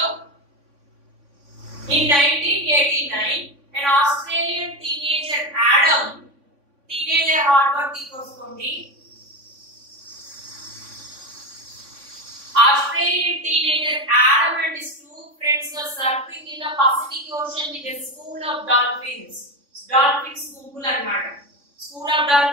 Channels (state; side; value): late; left; 3.5 ms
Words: In 1989, an Australian teenager Adam, teenager hard work తీసుకోండి. Australian teenager Adam and his two friends were surfing in the Pacific Ocean with a school of dolphins. Dolphins school అన్నమాట. School of